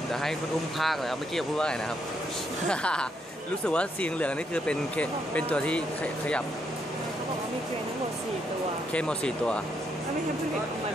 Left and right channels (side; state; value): both; normal; correlation 0.76